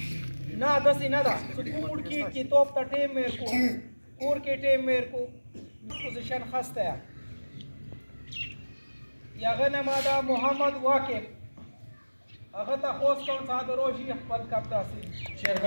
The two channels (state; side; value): inverted; both; correlation -1.00